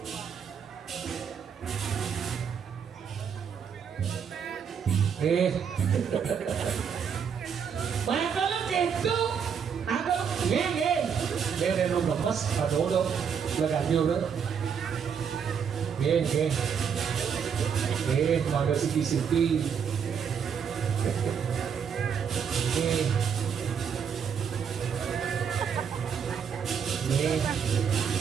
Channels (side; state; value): left; quieter; 7.2 dB